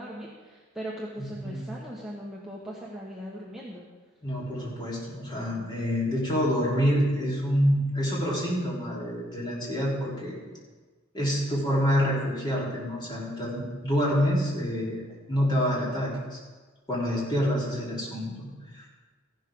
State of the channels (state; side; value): normal; both; correlation 0.71